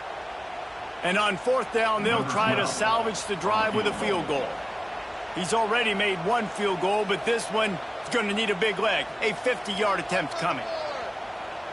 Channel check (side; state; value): both; identical; correlation 1.00